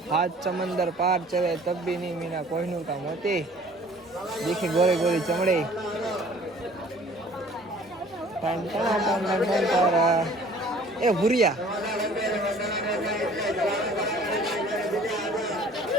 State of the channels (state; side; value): normal; both; correlation 0.52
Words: હાથ સમંદર પાર ચલે તબ भी नहीं मीना कोहिनूर का मोती देखी गोरी गोरी चमड़ी टन टन टन टन टन तारा ए भूरिया